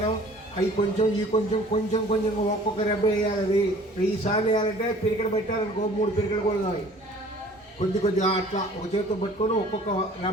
అవి కొంచెం ఈ కొంచెం కొంచెం కొంచెం ఒక్కొక్క రెబ్బ వేయాలి. అది 1000 సార్లు వేయాలంటే పిరికడ పెట్టారనుకో 3 పిరికలు కూడా కావాలి. కొద్దిగా అట్లా ఒక చేతితో పట్టుకొని ఒక్కొక్క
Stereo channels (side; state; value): both; normal; correlation 0.50